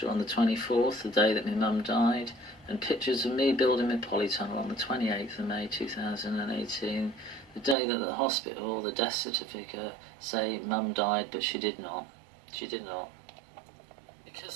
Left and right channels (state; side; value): drops out; left; at 7.8 s